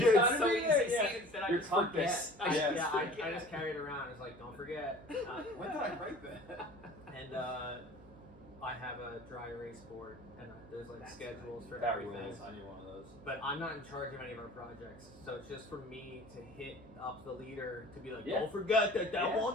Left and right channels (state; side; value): noise; right; hum, 20 dB below the sound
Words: gotta so be easy there, to yeah. see it that I Your just forget. compass. I Yes. just I forget. just carry it around. It's like, don't forget. When did I write that? And I have a dry erase board, and there's like That's schedules for That everything. rules. I need one of those. But I'm not in charge of any of our projects, so it's just for me to hit up the leader to be like, Yeah. don't forget that Yeah.